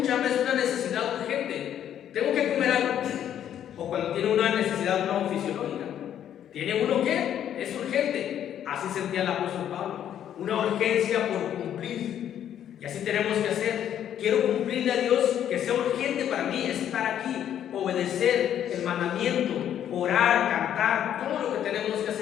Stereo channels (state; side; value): quieter; right; 10.2 dB